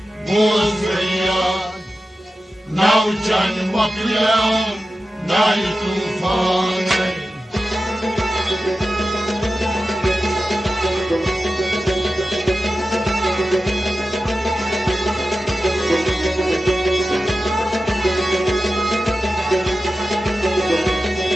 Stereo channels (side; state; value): both; normal; correlation 0.93